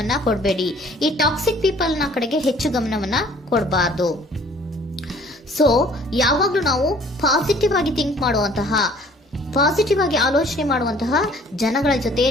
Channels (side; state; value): both; normal; correlation 0.55